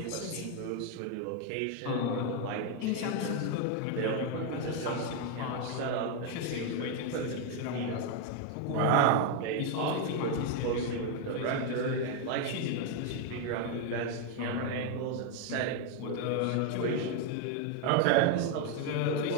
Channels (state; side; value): different; both; correlation 0.01